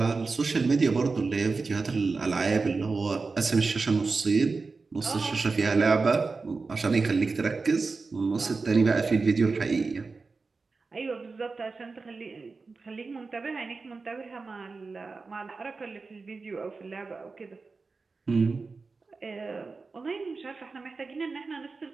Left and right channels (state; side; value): quieter; left; 4.2 dB